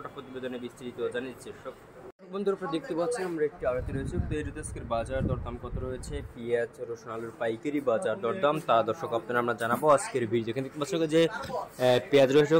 প্রতিবেদনে বিস্তারিত জানিয়েছি। বন্ধুরা, আপনারা দেখতে পাচ্ছেন আমরা একটি আড়তে রয়েছে পেঁয়াজ, আজকের বাজার দরদাম কত রয়েছে, পেঁয়াজ, রসুন, আলুর পাইকারি বাজার দরদাম তা দর্শক আপনারা আমরা জানাবো আজকের ভিডিও। এখানে দেখতে পাচ্ছেন যে পেঁয়াজ রয়েছে,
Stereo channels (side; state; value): both; identical; correlation 1.00